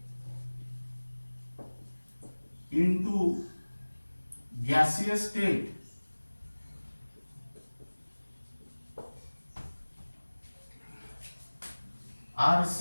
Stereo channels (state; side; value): inverted; both; correlation -1.00